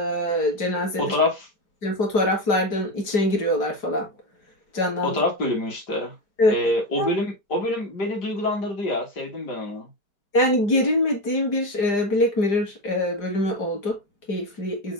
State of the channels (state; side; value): late; right; 4.9 ms